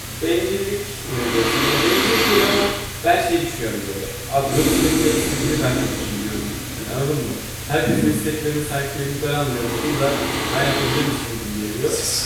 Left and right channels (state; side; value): identical; both; correlation 1.00